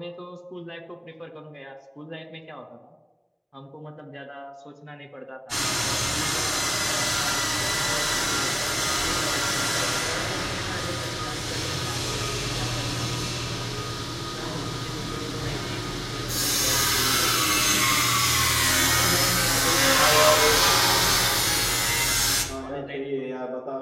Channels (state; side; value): identical; both; correlation 1.00